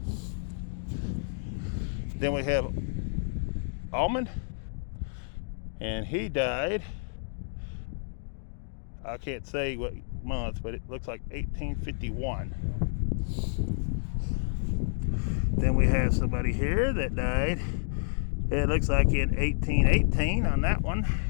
Then we have Almond, and he died, I can't say what month, but it looks like 1851. Then we have somebody here that died, it looks like in 1818 on that one,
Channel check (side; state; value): right; silent; digital silence